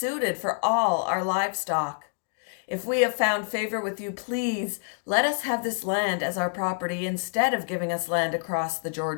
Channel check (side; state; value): right; silent; digital silence